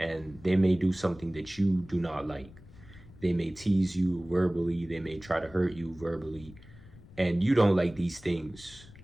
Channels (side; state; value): left; noise; rumble, 20 dB below the sound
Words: they may do something that you do not like. They may tease you verbally, they may try to hurt you verbally, and you don't like these things.